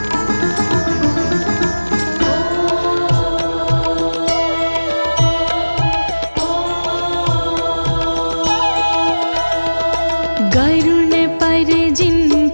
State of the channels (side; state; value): both; inverted; correlation -1.00